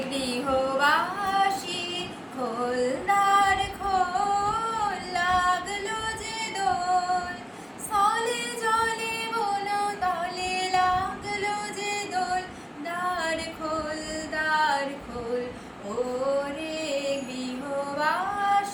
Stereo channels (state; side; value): identical; both; correlation 1.00